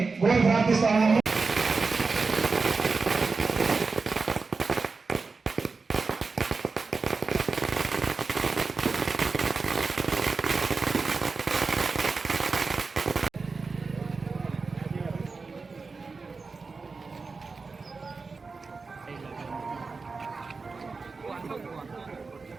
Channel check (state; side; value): quieter; left; 4.4 dB